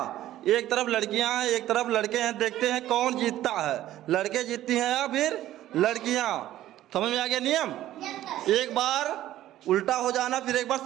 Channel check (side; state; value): left; quieter; 13.7 dB